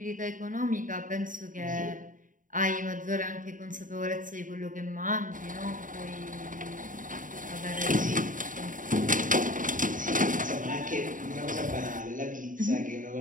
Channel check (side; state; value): left; late; 0.38 ms